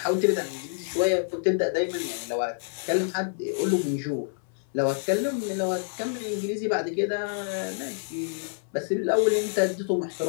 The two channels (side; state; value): right; silent; 60 dB below the other